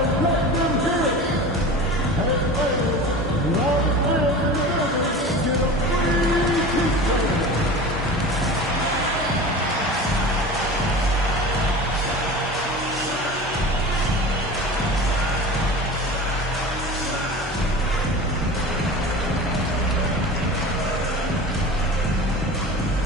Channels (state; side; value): normal; both; correlation 0.34